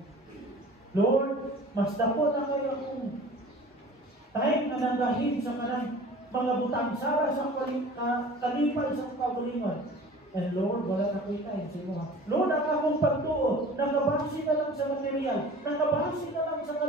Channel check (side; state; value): both; normal; correlation 0.43